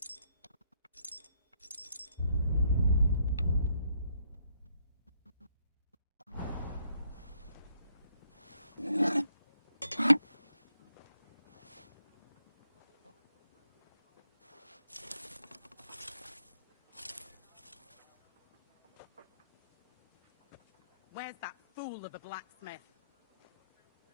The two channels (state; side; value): inverted; both; correlation -0.72